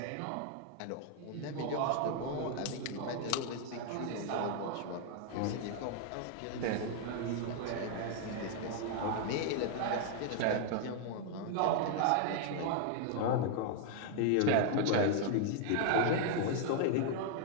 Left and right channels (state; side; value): different; both; correlation 0.00